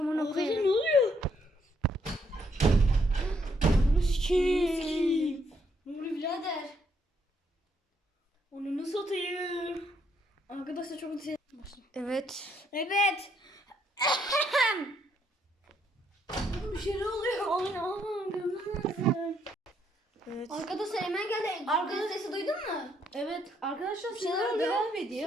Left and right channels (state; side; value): normal; both; correlation 0.72